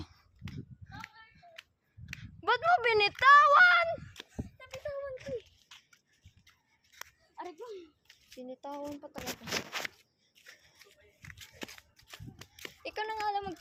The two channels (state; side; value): identical; both; correlation 1.00